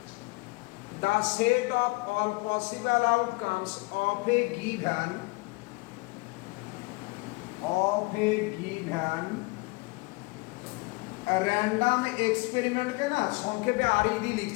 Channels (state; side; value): quieter; right; 25.8 dB